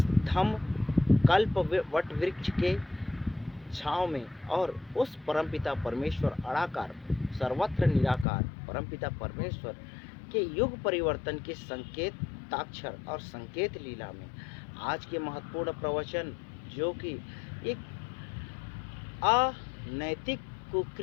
धम्म कल्प वट वृक्ष के छाँव में और उस परमपिता परमेश्वर अड़ाकार सर्वत्र निराकार परमपिता परमेश्वर के युग परिवर्तन के संकेताक्षर और संकेत लीला में आज के महत्वपूर्ण प्रवचन, जो कि एक अनैतिक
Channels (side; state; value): right; drops out; at 8.2 s